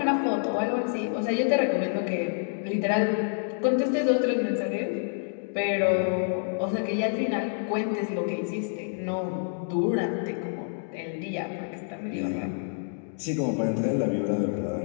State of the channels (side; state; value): right; silent; digital silence